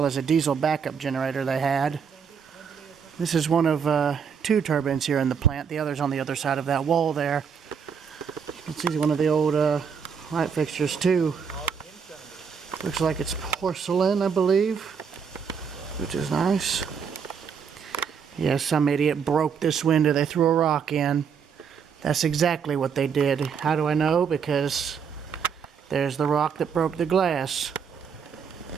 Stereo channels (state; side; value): quieter; left; 6.6 dB